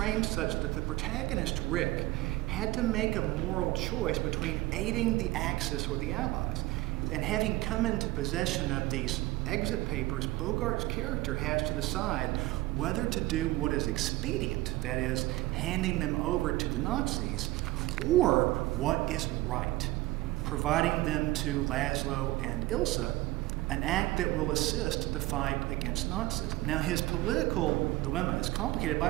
such that the protagonist, Rick, had to make a moral choice between aiding the Axis or the Allies. And having come into possession of these exit papers, Bogart's character has to decide whether to do what is expedient, that is, handing them over to the Nazis, or what is right, providing them to Laszlo and Ilsa, an act that will assist the fight against Nazism. Now, his political dilemma is complicated by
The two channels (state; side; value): quieter; left; 18.7 dB